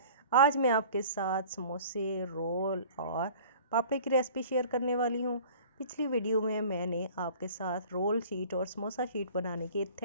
आज मैं आपके साथ समोसे, रोल और पापड़ी की रेसिपी शेयर करने वाली हूँ। पिछली वीडियो में मैंने आपके साथ रोल शीट और समोसा शीट बनाने की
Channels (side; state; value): both; inverted; correlation -0.46